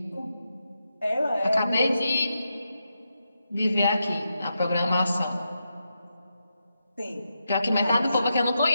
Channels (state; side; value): inverted; both; correlation -0.86